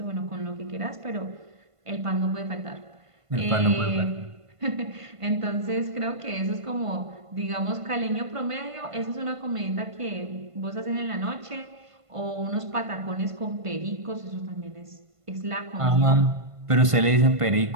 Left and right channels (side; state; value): left; late; 1.5 ms